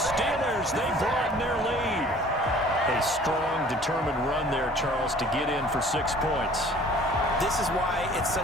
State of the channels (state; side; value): normal; both; correlation 0.51